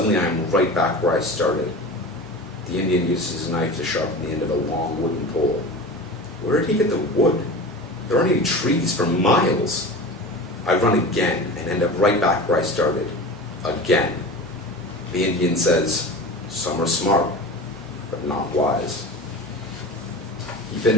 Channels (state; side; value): normal; both; correlation 0.33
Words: I am right back where I started. The Indian uses his knife to sharpen the end of a long wooden pole. Where did he get the wood? There aren't any trees for miles. I run again and end up right back where I started. Again. The Indian says, "Some are smart, but not wise." He